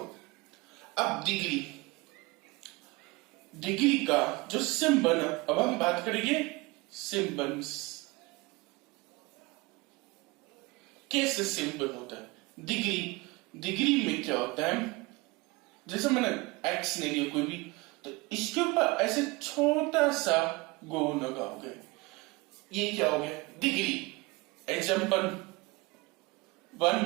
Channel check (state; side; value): quieter; left; 23.9 dB